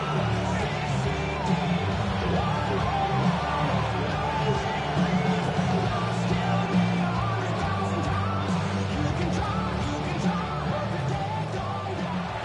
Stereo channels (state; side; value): identical; both; correlation 1.00